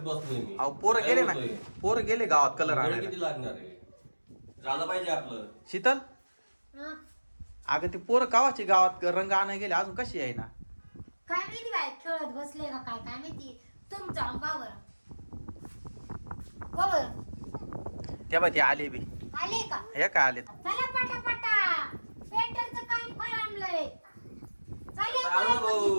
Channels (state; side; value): inverted; both; correlation -1.00